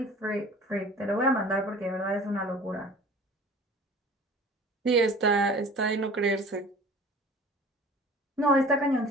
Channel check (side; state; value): both; normal; correlation 0.44